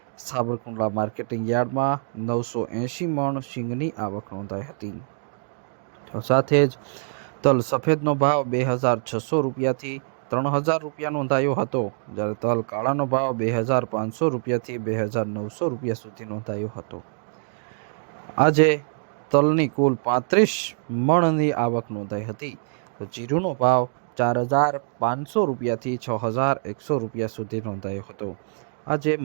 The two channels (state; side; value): silent; left; digital silence